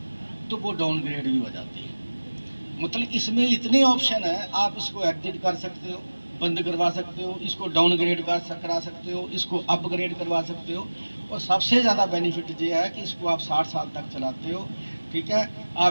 तो वो डाउनग्रेड भी हो जाती है। मतलब इसमें इतनी ऑप्शन है, आप इसको एग्जिट कर सकते हो, बंद करवा सकते हो, इसको डाउनग्रेड करा सकते हो, इसको अपग्रेड करवा सकते हो। और सबसे ज़्यादा बेनिफिट ये है कि इसको आप 60 साल तक चलाते हो, ठीक है।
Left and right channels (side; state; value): both; inverted; correlation -1.00